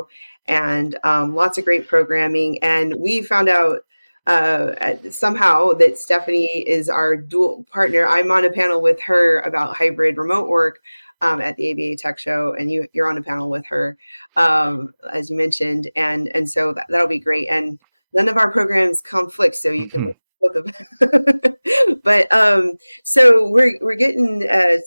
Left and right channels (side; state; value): both; inverted; correlation -1.00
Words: and lots of great programming. And we found out somehow that Stephanie is our dual partner. I'm on a panel with her about hybrid remote work at the ABA Tech Show, and you're on a panel with her, as you mentioned, and so that'll be great. And none of our programs conflict, so you can Mm-hmm. look both of them. But so we're getting